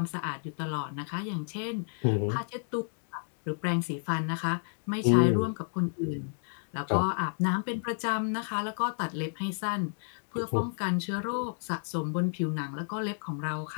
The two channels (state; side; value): silent; right; digital silence